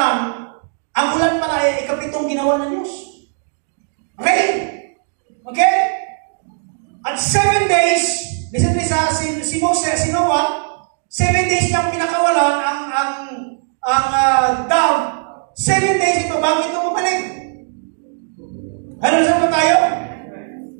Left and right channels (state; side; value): silent; left; digital silence